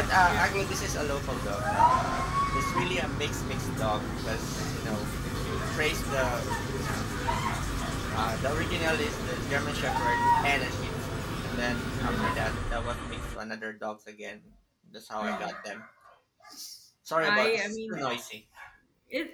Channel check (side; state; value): both; identical; correlation 1.00